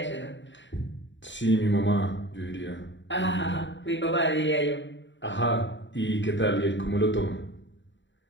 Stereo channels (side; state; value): right; late; 0.54 ms